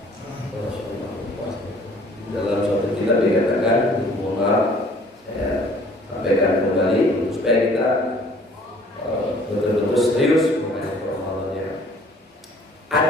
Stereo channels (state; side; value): normal; both; correlation 0.55